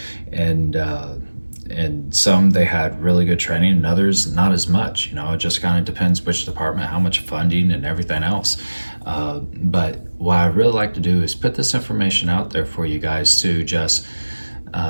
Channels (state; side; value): inverted; both; correlation -1.00